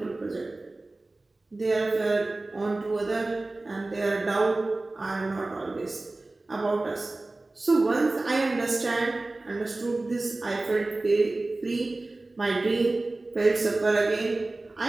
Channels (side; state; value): left; quieter; 3.0 dB